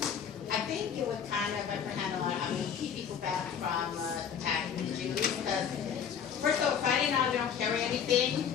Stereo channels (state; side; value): quieter; right; 7.8 dB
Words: I think it would kind of keep people back from attacking the Jews. Because first of all, Friday night we don't carry anything.